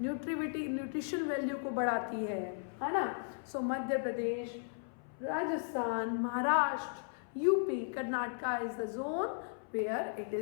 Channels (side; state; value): right; silent; 54 dB below the other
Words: न्यूट्रिशन वैल्यू को बढ़ाती है ना. So Madhya Pradesh, Rajasthan, Maharashtra, UP, Karnataka is the zone where it